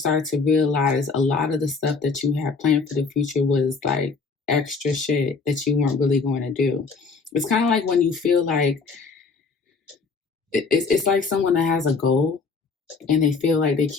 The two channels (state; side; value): quieter; right; 4.6 dB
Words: to realize a lot of the stuff that you had planned for the future was like extra shit that you weren't really going to do. It's kind of like when you feel like it's like someone that has a goal and they feel like they